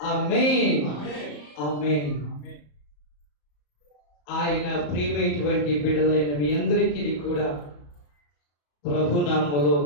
ఆమేన్, ఆమేన్. ఆయన ప్రియమైనటువంటి బిడ్డలైన మీ అందరికీ కూడా ప్రభునామములో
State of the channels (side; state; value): right; late; 34 ms